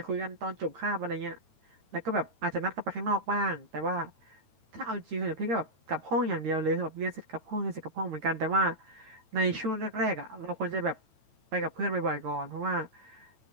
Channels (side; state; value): left; late; 9.0 ms